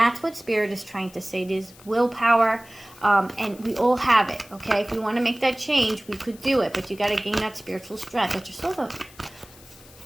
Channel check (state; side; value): noise; left; hiss, 23 dB below the sound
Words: what Spirit is trying to say. There's willpower, and we all have it, okay? If we want to make that change, we could do it, but you got to gain that spiritual strength. That's your soul